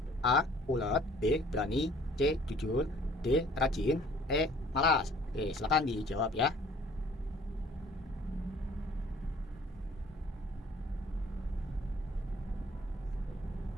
A. Ulet, B. Berani, C. Jujur, D. Rajin, E. Malas. Oke, silakan dijawab ya.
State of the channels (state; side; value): normal; both; correlation 0.54